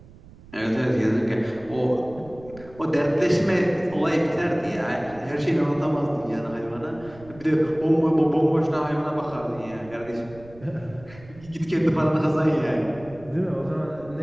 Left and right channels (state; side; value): noise; right; rumble, 21 dB below the sound